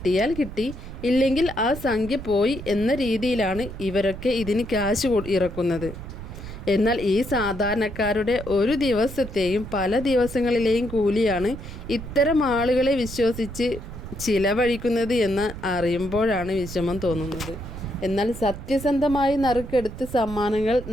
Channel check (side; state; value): right; noise; rumble, 11 dB below the sound